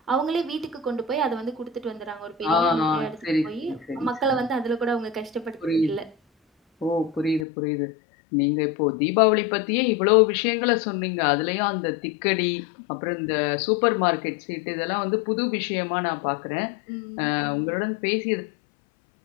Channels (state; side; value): drops out; right; at 7.5 s